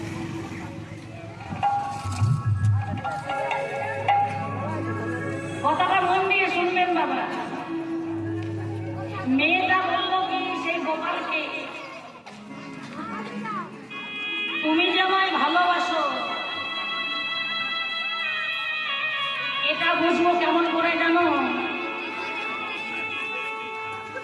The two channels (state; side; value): identical; both; correlation 1.00